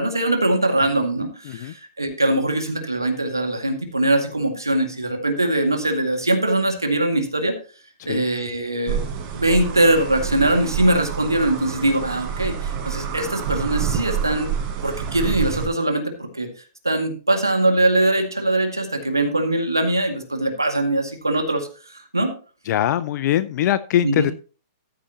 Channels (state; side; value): inverted; both; correlation -0.69